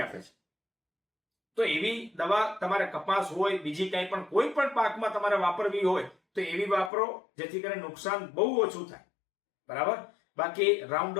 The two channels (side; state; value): right; drops out; at 6.9 s